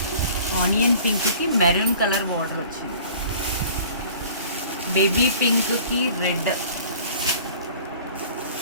ఆనియన్ పింక్కి మెరూన్ కలర్ బార్డర్ వచ్చింది. బేబీ పింక్కి రెడ్.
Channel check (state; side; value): inverted; both; correlation -0.48